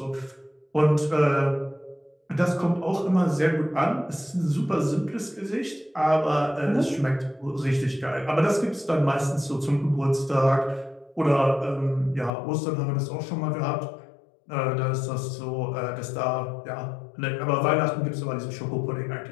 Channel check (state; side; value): drops out; right; at 12.3 s